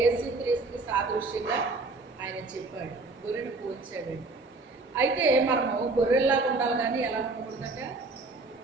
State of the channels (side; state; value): left; quieter; 3.4 dB